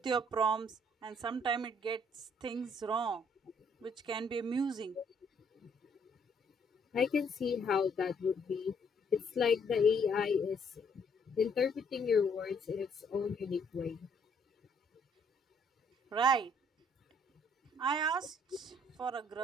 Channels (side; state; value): both; normal; correlation 0.66